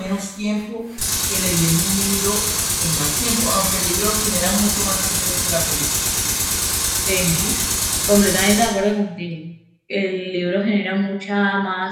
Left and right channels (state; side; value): identical; both; correlation 1.00